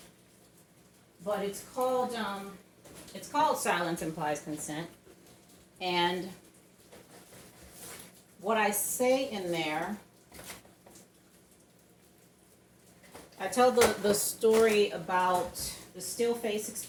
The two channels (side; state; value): both; identical; correlation 1.00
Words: But it's called Silence Implies Consent. And what I say in there, I tell the story about the still face